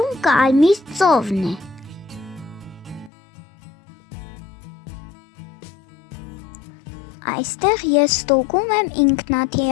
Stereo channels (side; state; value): right; drops out; at 3.1 s